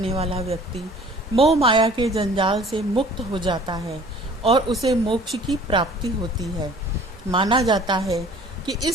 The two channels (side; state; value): both; normal; correlation 0.50